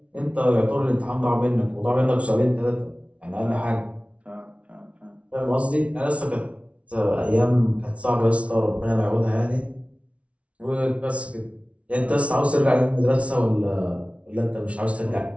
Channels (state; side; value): late; left; 0.063 ms